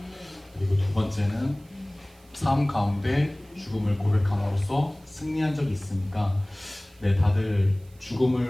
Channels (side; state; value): right; noise; hiss, 30 dB below the sound